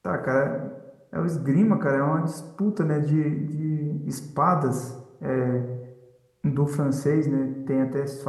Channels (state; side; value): identical; both; correlation 1.00